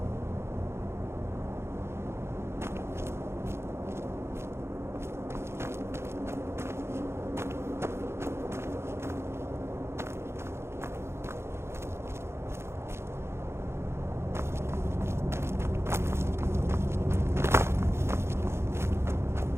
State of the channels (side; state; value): left; late; 0.12 ms